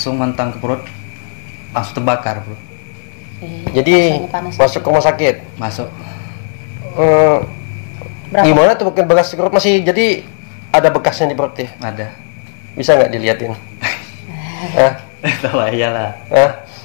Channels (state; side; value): silent; right; digital silence